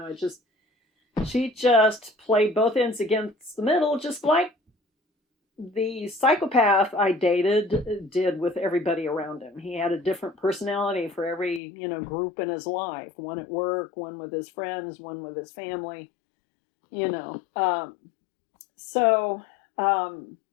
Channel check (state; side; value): drops out; right; at 11.6 s